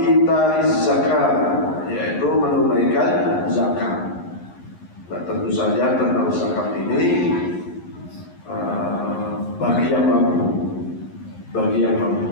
zakat, yaitu menunaikan zakat. Nah, tentu saja tentang zakat ini bagi yang mampu,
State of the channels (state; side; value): late; right; 11 ms